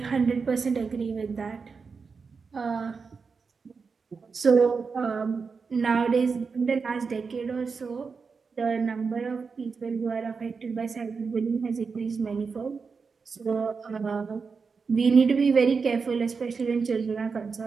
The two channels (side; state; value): left; quieter; 5.1 dB